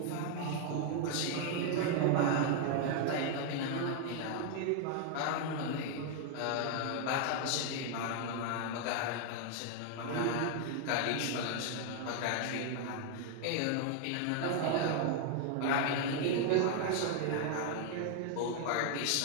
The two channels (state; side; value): different; both; correlation 0.00